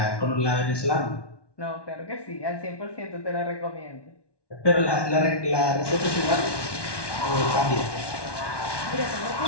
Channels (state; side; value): late; right; 1.2 ms